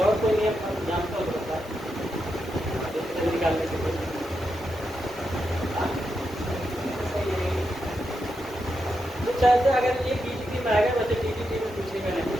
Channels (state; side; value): normal; both; correlation 0.85